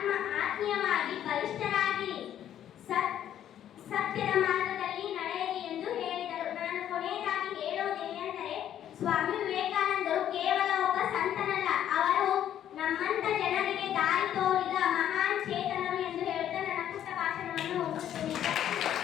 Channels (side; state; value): right; quieter; 10.7 dB